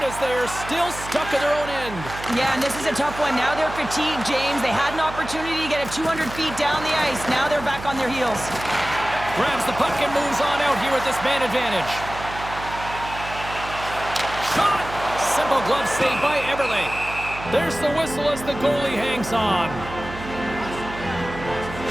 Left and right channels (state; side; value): noise; right; hum, 12 dB below the sound